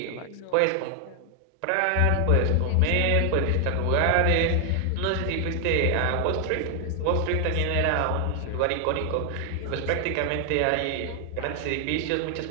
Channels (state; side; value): different; both; correlation 0.00